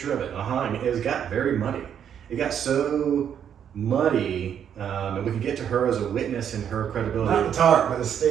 of it. I mean, it got very muddy. It got so muddy, and we could get to her as a witness and her credibility. Not the tarp, but the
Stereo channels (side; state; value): left; quieter; 8.8 dB